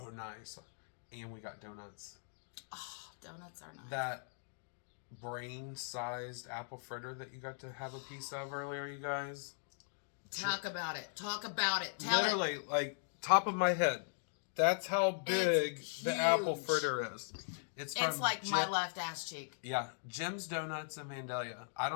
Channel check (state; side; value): silent; right; digital silence